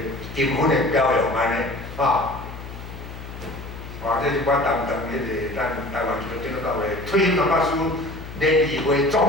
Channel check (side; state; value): left; noise; hum, 12 dB below the sound